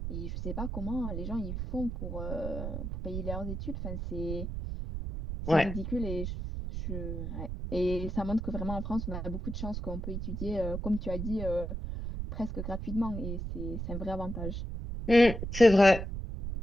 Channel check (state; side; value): noise; right; rumble, 5 dB below the sound